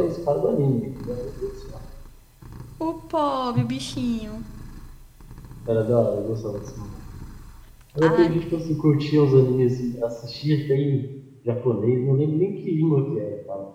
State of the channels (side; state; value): both; identical; correlation 1.00